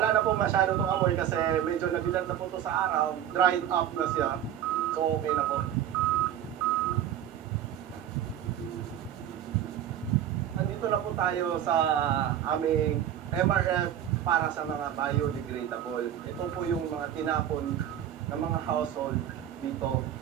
na po masyado itong amoy kasi medyo nabilan na po ito sa araw, dried up na siya. So okay na po. Andito na po tayo sa aming MRF para sa mga biodegradable. Ito po yung mga tinapon ng mga household dito.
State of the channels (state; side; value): quieter; left; 10.5 dB